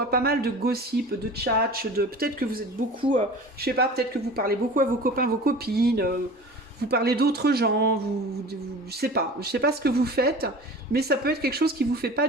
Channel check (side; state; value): both; normal; correlation 0.39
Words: pas mal de gossip, de tchatch, peut-être que vous êtes beaucoup, je sais pas, peut-être que vous parlez beaucoup à vos copains, vos copines, vous parlez d'autres gens, je sais pas ce que vous faites, mais ça peut être quelque chose qui vous fait pas